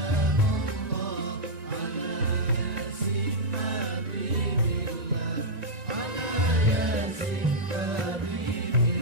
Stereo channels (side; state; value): left; late; 1.9 ms